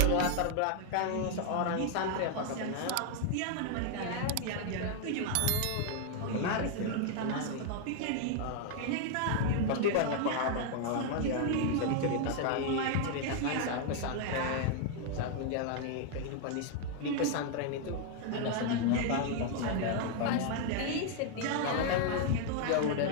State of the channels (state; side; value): different; both; correlation 0.00